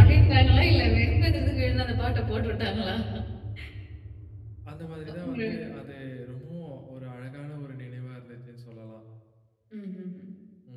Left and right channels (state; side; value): identical; both; correlation 1.00